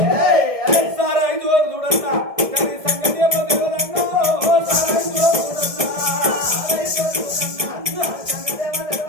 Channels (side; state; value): left; late; 1.7 ms